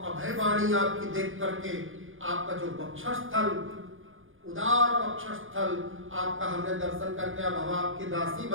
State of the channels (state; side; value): late; left; 0.58 ms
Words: अभय वाणी आपकी देख करके, आपका जो वक्षस्थल उदार वक्षस्थल आपका हमने दर्शन करके अब हम आपकी दासी